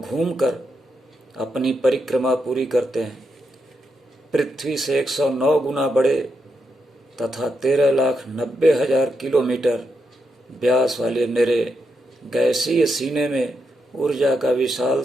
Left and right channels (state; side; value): normal; both; correlation 0.83